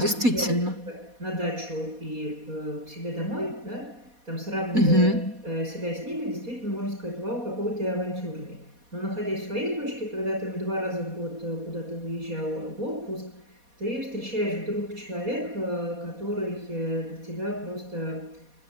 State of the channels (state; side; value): late; left; 4.2 ms